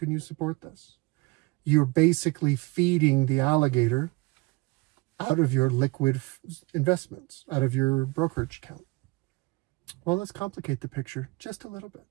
you support this? You're basically feeding the alligator out of your liquid investments, out of your brokerage account. Well, let's complicate the picture just a little bit.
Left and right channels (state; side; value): quieter; left; 23.9 dB